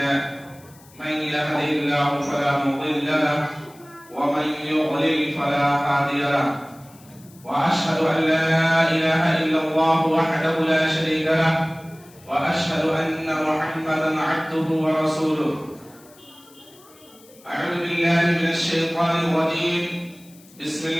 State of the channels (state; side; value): noise; left; hiss, 26 dB below the sound